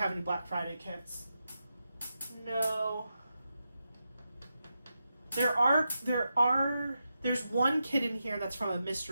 any Black Friday kits. No. There's one kit in here that's from a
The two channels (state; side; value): inverted; both; correlation -0.88